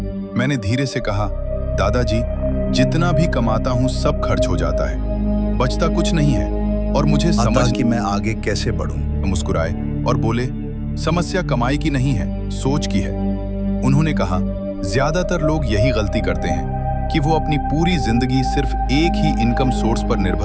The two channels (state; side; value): identical; both; correlation 1.00